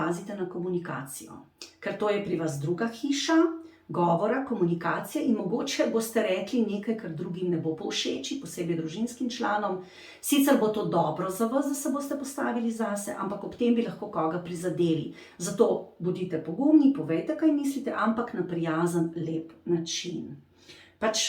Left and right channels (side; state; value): both; identical; correlation 1.00